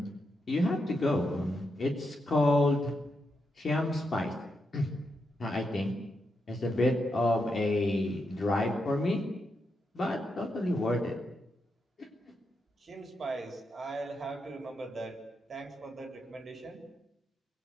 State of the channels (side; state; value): both; normal; correlation 0.84